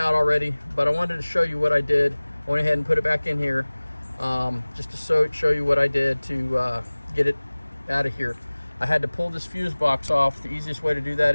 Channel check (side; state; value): both; inverted; correlation -1.00